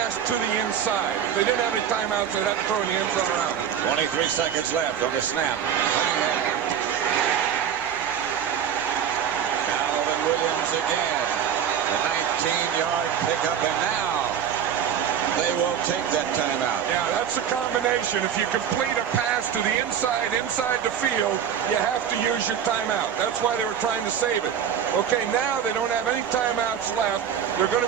to the inside. If they didn't have any timeouts, they'd have to throw in the end zone around. 23 seconds left on the snap. Calvin Williams again. A 19-yard pickup, and now they will take that timeout. Yeah, that's a combination. If you complete a pass to the inside the field, you have to use your timeout. That's why they were trying to save it. Okay, now they don't have any timeouts left. They're going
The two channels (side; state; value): left; quieter; 8.6 dB